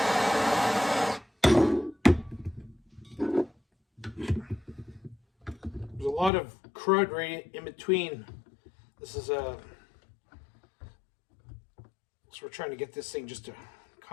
There's a lot of crud right in between. This is so we're trying to get this thing just to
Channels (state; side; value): drops out; right; at 6.3 s